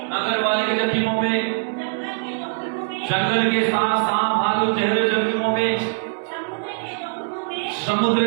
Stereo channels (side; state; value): left; silent; 63 dB below the other